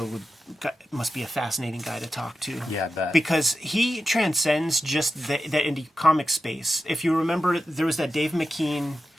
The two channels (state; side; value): normal; both; correlation 0.91